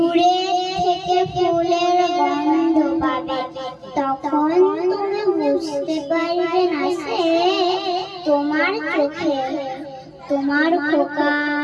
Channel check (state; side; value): identical; both; correlation 1.00